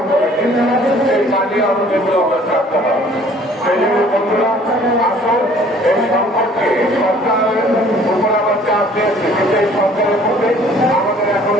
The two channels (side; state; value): both; normal; correlation 0.55